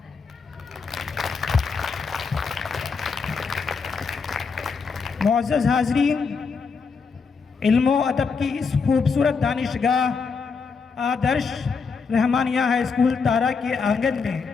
मुअज़्ज़ज़ हाज़रीन, इल्म व अदब की इस खूबसूरत दानिशगाह आदर्श रहमानिया हाई स्कूल तारा के आंगन में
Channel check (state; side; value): quieter; right; 5.2 dB